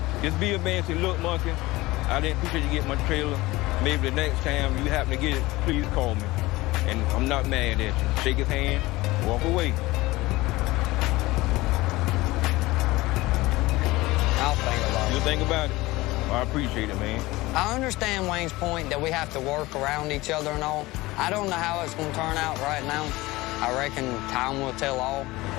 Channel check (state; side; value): quieter; right; 19.9 dB